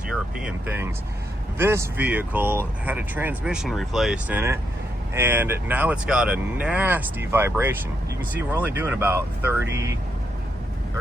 European things. This vehicle had a transmission replaced in it, and now it's got a nasty vibration. You can see we're only doing about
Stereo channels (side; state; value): both; normal; correlation 0.79